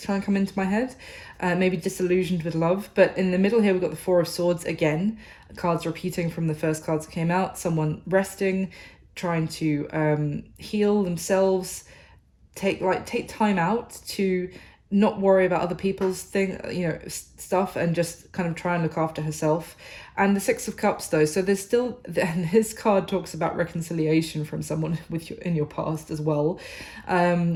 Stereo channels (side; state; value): both; identical; correlation 1.00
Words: trying to come into my head. Maybe disillusioned with love. But in the middle here, we've got the Four of Swords again, cards repeating from the first cards that came out. Someone resting, trying to heal themselves, take time out to not worry about other people's stuff, and just kind of try and look after herself. And the Six of Cups, though, so there's still, and this card talks about reconciliation from someone in your past as well.